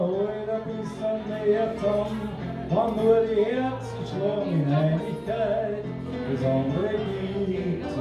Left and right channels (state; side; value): identical; both; correlation 1.00